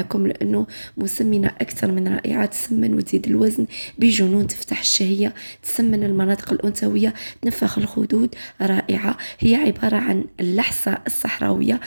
لأنه مسمنة أكثر من رائعة، تسمن وتزيد الوزن بجنون، تفتح الشهية، تسمن المناطق الأنثوية، تنفخ الخدود. رائعة، هي عبارة عن اللحسة الصحراوية.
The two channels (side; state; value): both; inverted; correlation -1.00